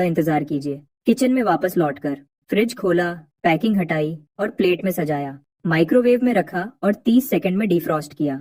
इंतजार कीजिए। किचन में वापस लौटकर फ्रिज खोला, पैकिंग हटाई और प्लेट में सजाया। माइक्रोवेव में रखा और 30 सेकंड में डिफ्रॉस्ट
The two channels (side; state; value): both; identical; correlation 1.00